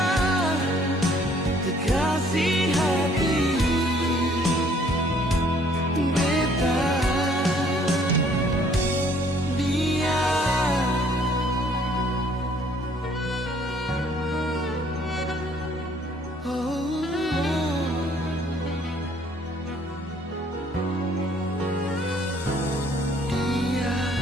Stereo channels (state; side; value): normal; both; correlation 0.61